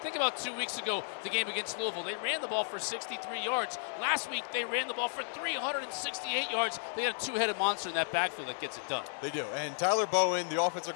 Think about 2 weeks ago, the game against Louisville. They ran the ball for 63 yards. Last week, they ran the ball for 368 yards. They got a two-headed monster in that backfield that gets it done. They do. And Tyler Bowen, the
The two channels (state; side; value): silent; right; digital silence